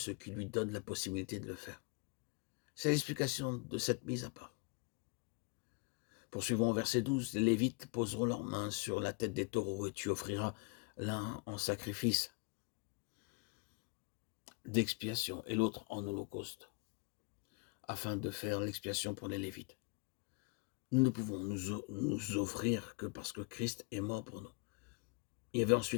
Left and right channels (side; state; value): right; quieter; 30.1 dB